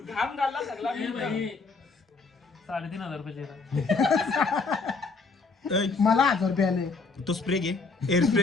घालला सगळा 3,500 रुपये मला 1000 रुपये आले. तो स्प्रे घे. हेअर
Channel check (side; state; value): right; quieter; 4.2 dB